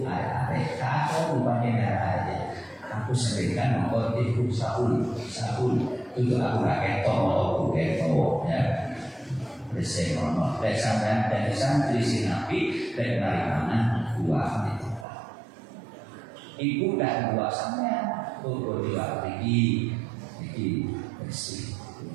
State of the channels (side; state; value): left; drops out; at 15.1 s